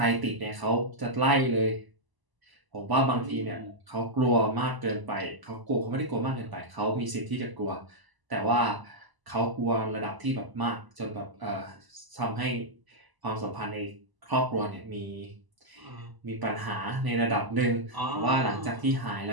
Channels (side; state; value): left; late; 1.0 ms